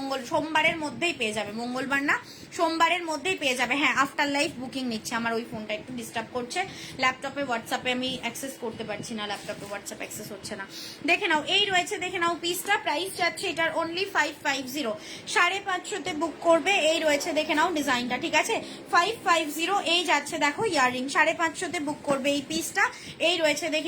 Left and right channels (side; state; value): both; identical; correlation 1.00